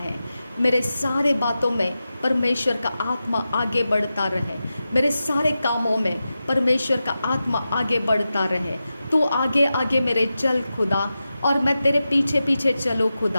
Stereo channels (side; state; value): both; inverted; correlation -0.92